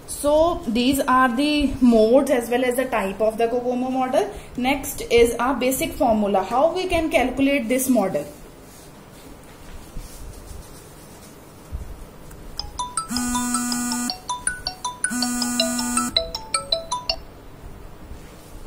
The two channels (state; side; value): identical; both; correlation 1.00